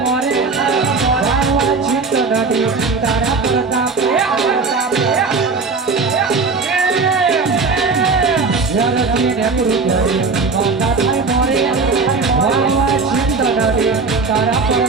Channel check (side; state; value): left; quieter; 4.3 dB